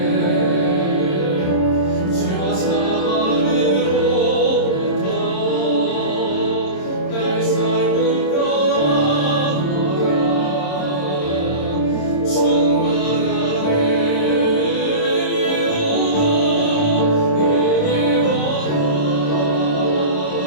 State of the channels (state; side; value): late; right; 26 ms